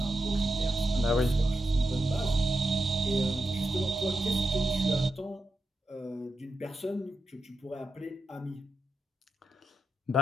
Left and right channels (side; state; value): both; normal; correlation 0.87